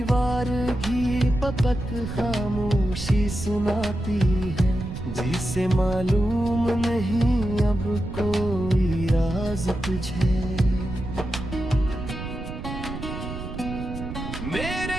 घी पपत खामोशी सुनाती है, जिसे मालूम नहीं अब कोई राज तुझे।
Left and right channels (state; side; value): noise; right; rumble, 8 dB below the sound